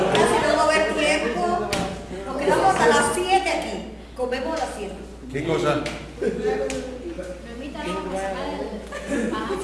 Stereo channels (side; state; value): both; identical; correlation 1.00